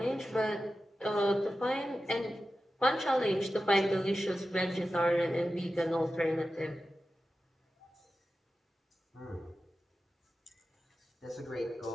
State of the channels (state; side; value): normal; both; correlation 0.93